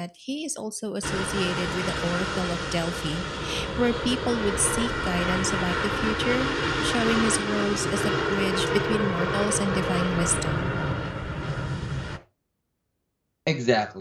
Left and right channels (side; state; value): both; identical; correlation 1.00